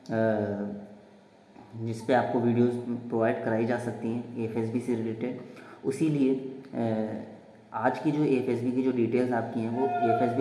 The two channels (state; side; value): identical; both; correlation 1.00